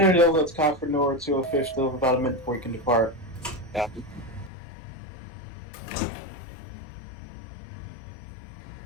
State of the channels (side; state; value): right; drops out; at 4.5 s